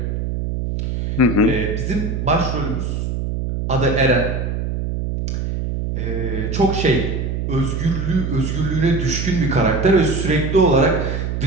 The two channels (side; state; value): right; noise; hum, 2 dB below the sound